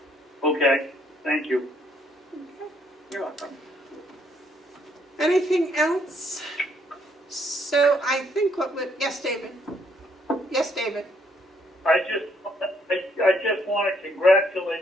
Okay, thank you. You're welcome. Anything else? So I think yes, David? Yes, David? I just want to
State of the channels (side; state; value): both; normal; correlation 0.69